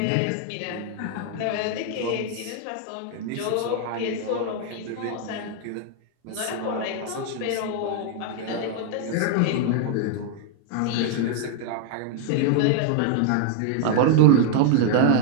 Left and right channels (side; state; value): both; different; correlation 0.00